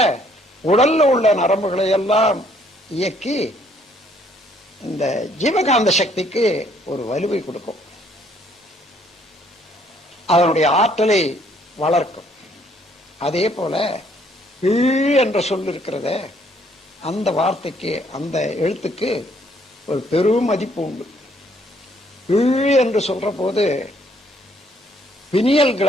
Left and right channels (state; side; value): normal; both; correlation 0.65